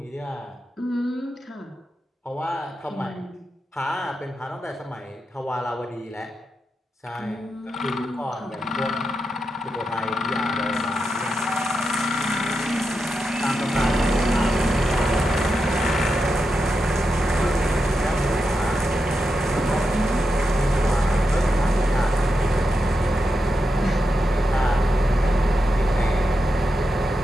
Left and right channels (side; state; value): both; normal; correlation 0.87